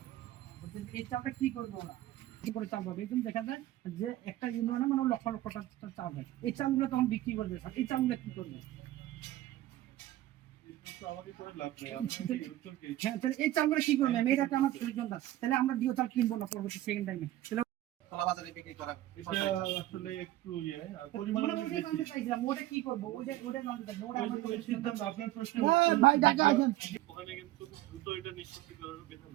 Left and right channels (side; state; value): left; quieter; 15.2 dB